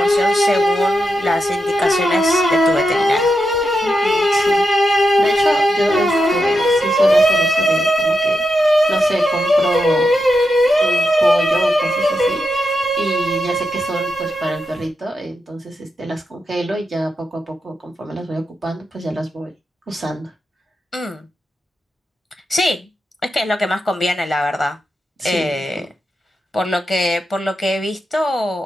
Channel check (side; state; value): both; normal; correlation 0.86